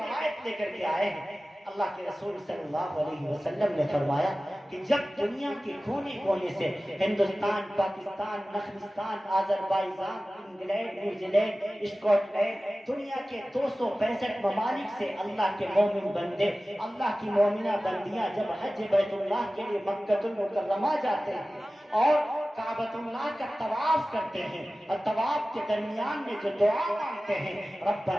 لے کر کے آئے ہیں۔ اللہ کے رسول صلی اللہ علیہ وسلم نے فرمایا کہ جب دنیا کے کونے کونے سے ہندوستان، پاکستان، نخلستان، Azerbaijan, England, New Zealand, Scotland, دنیا کے 265 ممالک سے اللہ کے مومن بندے، اللہ کی مومنہ بندیاں جب حج بیت اللہ کے لیے مکہ المکرمہ جاتے ہیں اور کعبۃ اللہ کا طواف کرتے ہیں، اور طواف کے درمیان میں جو دعا مانگتے ہیں،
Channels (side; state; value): both; normal; correlation 0.96